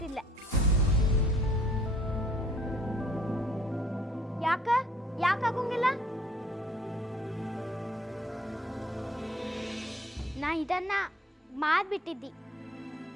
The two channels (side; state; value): both; normal; correlation 0.60